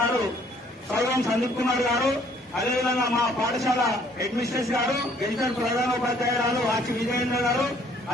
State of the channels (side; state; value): both; normal; correlation 0.61